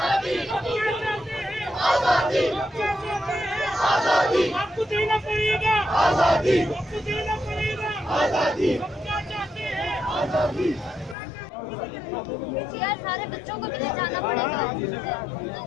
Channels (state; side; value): drops out; right; at 11.2 s